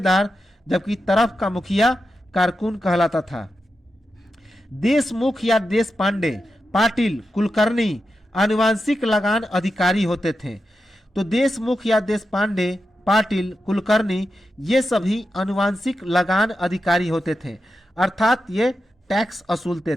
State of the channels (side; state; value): both; normal; correlation 0.89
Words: जबकि तरफ का मुखिया कारकुन कहलाता था। देशमुख या देश पांडे, पाटिल, कुलकर्णी आनुवांशिक लगान अधिकारी होते थे। तो देशमुख या देश पांडे, पाटिल, कुलकर्णी ये सभी आनुवांशिक लगान अधिकारी होते थे, अर्थात ये टैक्स वसूलते